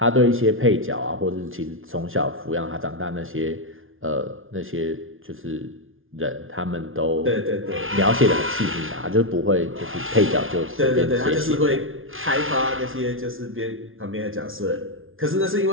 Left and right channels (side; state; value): left; late; 0.59 ms